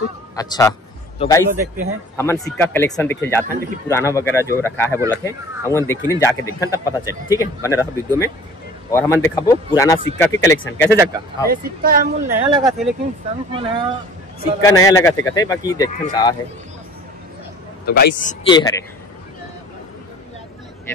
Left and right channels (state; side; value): normal; both; correlation 0.47